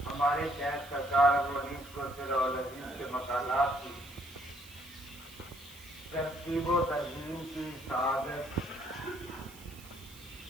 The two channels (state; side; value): noise; right; hiss, 19 dB below the sound